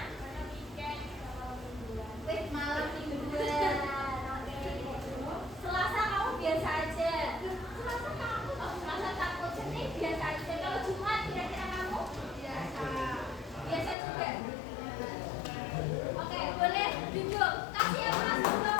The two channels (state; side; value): drops out; right; at 14.0 s